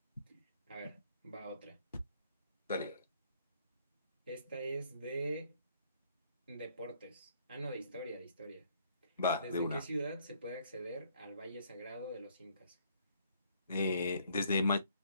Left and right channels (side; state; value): both; inverted; correlation -0.64